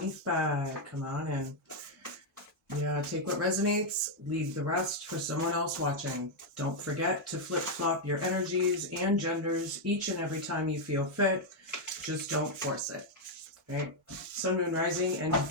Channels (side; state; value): both; normal; correlation -0.01